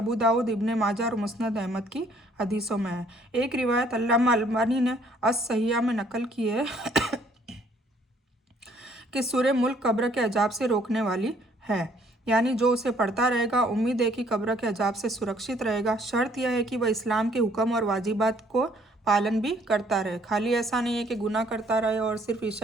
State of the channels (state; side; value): normal; both; correlation 0.62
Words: दाऊद, इब्ने माजा और मुस्नद अहमद की हदीसों में है। एक रिवायत अल्लामा अलबानी ने अस-सहिहा में नकल की है कि सूरह मुल्क कब्र के अजाब से रोकने वाली है, यानी जो उसे पढ़ता रहेगा उम्मीद है कि कब्र के अजाब से सुरक्षित रहेगा। शर्त यह है कि वह इस्लाम के हुक्म और वाजिबात को पालन भी करता रहे। खाली ऐसा नहीं है कि गुनाह करता रहे और सिर्फ